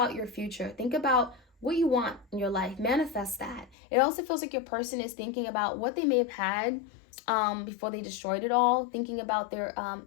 your future. Think about what you want in your life. Manifest that. It also feels like your person is thinking about what they may have had before they destroyed it all. Thinking about their, I'm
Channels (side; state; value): right; drops out; at 3.8 s